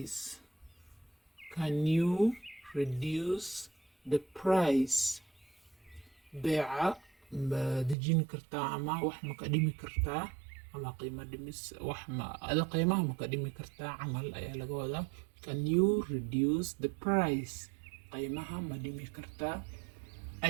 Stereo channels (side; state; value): left; drops out; at 8.0 s